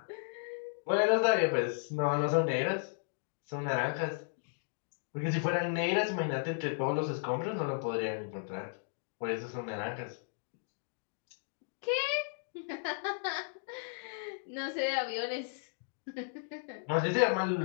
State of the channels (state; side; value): silent; right; digital silence